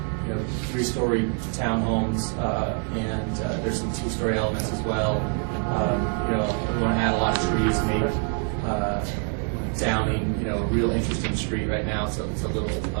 three-story townhomes, and there's some two-story elements as well. We want to add a lot of trees, make Downing, a real interesting street. Right now, it's a little.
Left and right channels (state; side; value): quieter; left; 36.2 dB